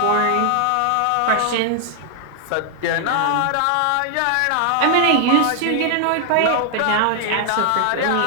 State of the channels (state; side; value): different; both; correlation 0.00